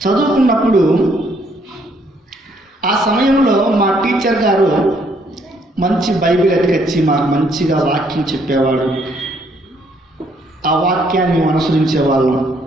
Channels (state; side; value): normal; both; correlation 0.68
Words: చదువుకున్నప్పుడు ఆ సమయంలో మా టీచర్ గారు మంచి బైబిల్ ఎత్తుకొచ్చి మాకు మంచిగా వాక్యం చెప్పేవాడు. ఆ వాక్యాన్ని అనుసరించేవాళ్ళం.